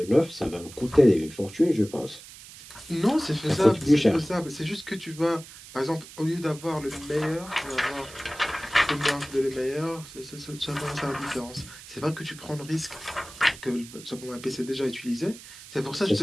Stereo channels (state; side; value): noise; right; hiss, 17 dB below the sound